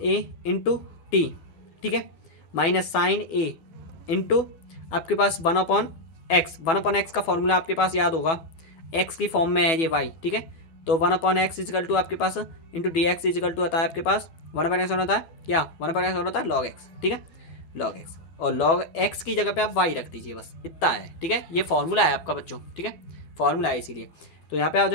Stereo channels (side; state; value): right; late; 12 ms